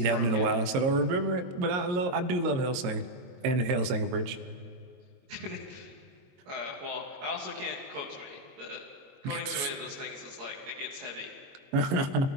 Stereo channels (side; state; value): left; late; 22 ms